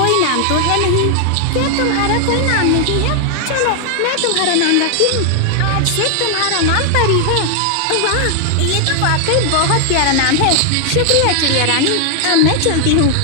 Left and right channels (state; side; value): different; both; correlation 0.00